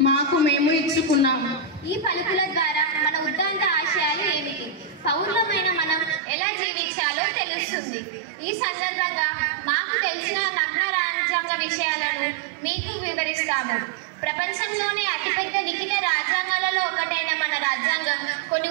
మాకు మేము ఇచ్చుకున్నాము. ఈ పలుకుల ద్వారా మన ఉద్దాంత ఆశయాలు ఏమిటి, పౌరులమైన మనం ఎలా జీవించాలో తెలుస్తుంది. ఈ సందర్భంగా మాకు తెలిసిన నగ్న రాజ్యాంగ విషయాలను మీకు వివరిస్తాము. ప్రపంచంలోనే అతిపెద్ద లిఖిత రాజ్యాంగాలలో ఒకటైన మన రాజ్యాంగం కొన్ని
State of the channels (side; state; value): left; drops out; at 6.2 s